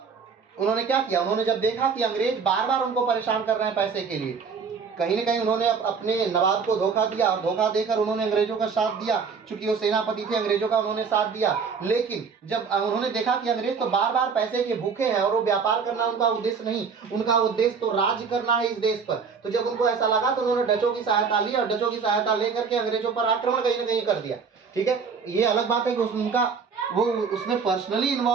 उन्होंने क्या किया, उन्होंने जब देखा कि अंग्रेज बार बार उनको परेशान कर रहे हैं पैसे के लिए, कहीं ना कहीं उन्होंने अपने नवाब को धोखा दिया और धोखा देकर उन्होंने अंग्रेजों का साथ दिया। चूंकि वो सेनापति थे अंग्रेजों का, उन्होंने साथ दिया। लेकिन जब उन्होंने देखा कि अंग्रेज तो बार बार पैसे के भूखे हैं और वो व्यापार करना उनका उद्देश्य नहीं, उनका उद्देश्य तो राज करना है इस देश पर, तो जब उनको ऐसा लगा तो उन्होंने डचों की सहायता ली और डचों की सहायता लेकर के अंग्रेजों पर आक्रमण कहीं ना कहीं कर दिया। ठीक है, ये अलग बात है कि उनका वो उसमें पर्सनली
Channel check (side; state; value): left; quieter; 5.6 dB